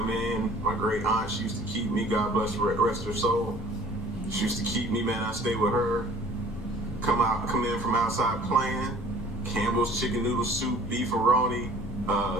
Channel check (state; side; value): normal; both; correlation 0.51